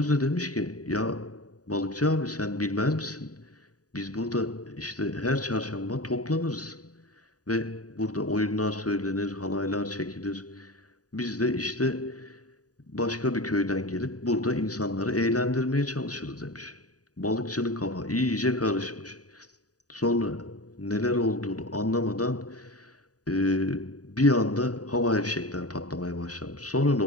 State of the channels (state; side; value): late; right; 0.68 ms